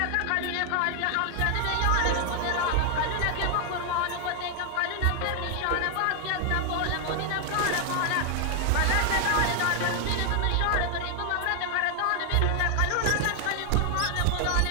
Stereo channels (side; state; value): both; different; correlation 0.00